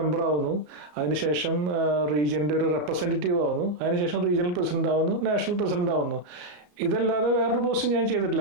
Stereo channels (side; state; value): left; late; 34 ms